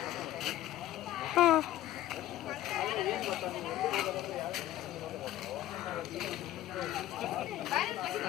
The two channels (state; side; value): quieter; right; 13.8 dB